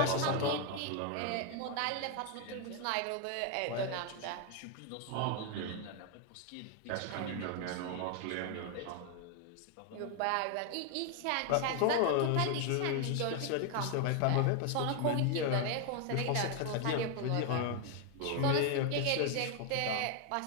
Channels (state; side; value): different; both; correlation 0.01